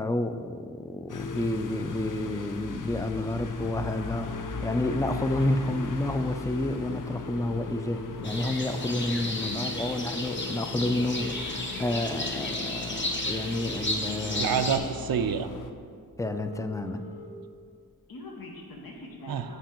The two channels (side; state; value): both; normal; correlation 0.57